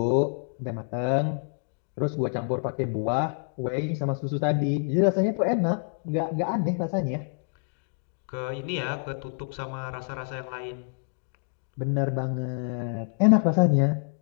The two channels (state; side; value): silent; right; 60 dB below the other